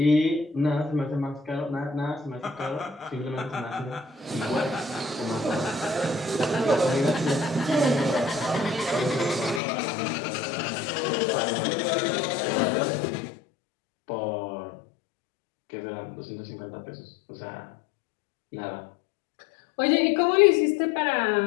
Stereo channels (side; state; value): right; drops out; at 9.6 s